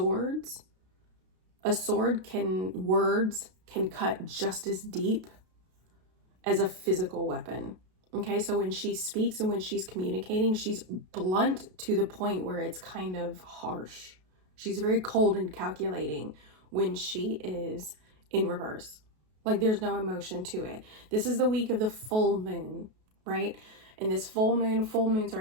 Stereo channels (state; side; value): late; left; 32 ms